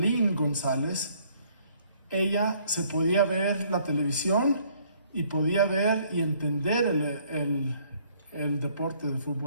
González, ella se podía ver la televisión y podía ver y entender el deporte de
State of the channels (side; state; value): both; inverted; correlation -0.63